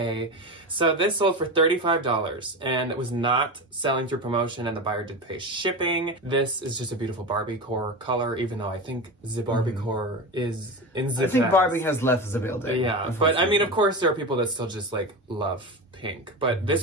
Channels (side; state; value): both; normal; correlation 0.24